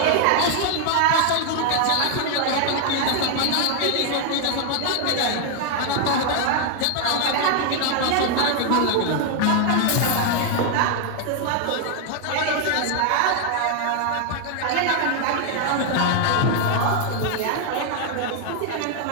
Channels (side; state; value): both; different; correlation 0.00